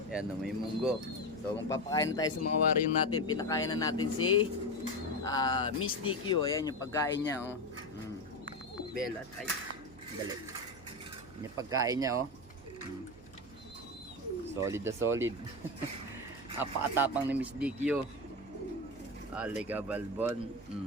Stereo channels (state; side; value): noise; right; hum, 22 dB below the sound